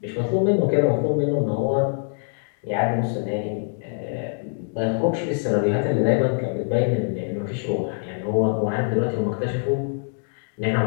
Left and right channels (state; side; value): silent; right; digital silence